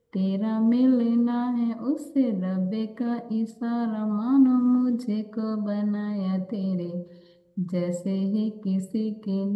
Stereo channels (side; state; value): both; identical; correlation 1.00